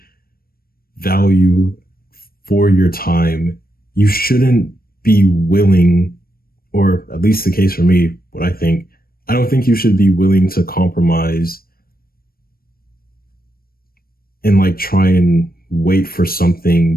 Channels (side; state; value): right; late; 0.43 ms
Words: value for your time, you shouldn't be willing, or at least the case for me, I don't think you should be willing to compromise and like try and wait for something